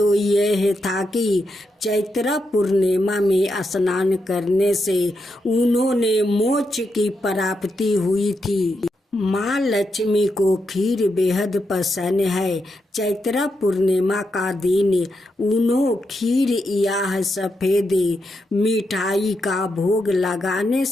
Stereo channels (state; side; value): normal; both; correlation 0.84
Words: यह था कि चैत्रा पूर्णिमा में स्नान करने से उन्होंने मोक्ष की प्राप्ति हुई थी। माँ लक्ष्मी को खीर बेहद पसंद है। चैत्रा पूर्णिमा का दिन उन्होंने खीर या सफेद मिठाई का भोग लगाने